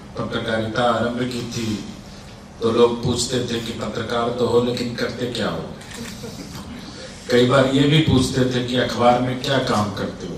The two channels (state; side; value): identical; both; correlation 1.00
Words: पत्रकारिता आरंभ की थी तो लोग पूछते थे कि पत्रकार तो हो लेकिन करते क्या हो। कई बार ये भी पूछते थे कि अखबार में क्या काम करते